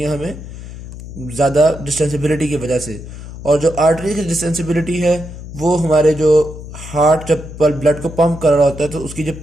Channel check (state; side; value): noise; left; hum, 12 dB below the sound